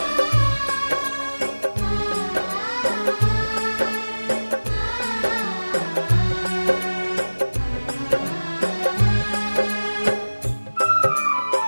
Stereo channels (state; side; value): inverted; both; correlation -1.00